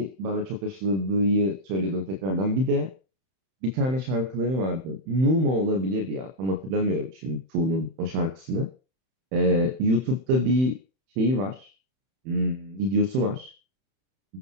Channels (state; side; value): late; left; 31 ms